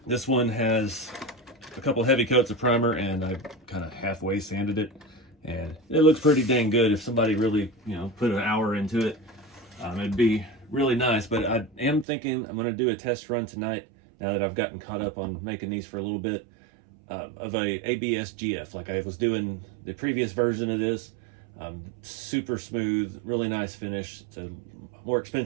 this one has a couple heavy coats of primer, and I kind of halfway sanded it, and it looks pretty dang good. If somebody really, put an hour into it, it'd be really nice. But I am thinking I'm going to do a test run tonight, now that I've gotten caught up on making these for a little bit, of a ABS GF, like I was doing the previous version of this. Super smooth, really nice finish. It's a more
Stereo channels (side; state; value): left; drops out; at 12.1 s